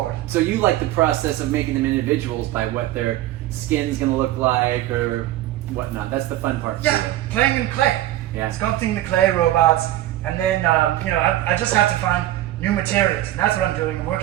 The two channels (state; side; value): quieter; left; 14.5 dB